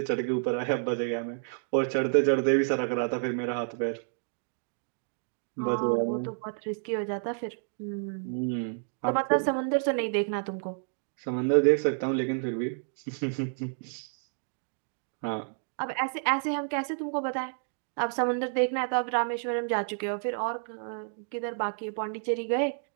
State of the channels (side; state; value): left; silent; digital silence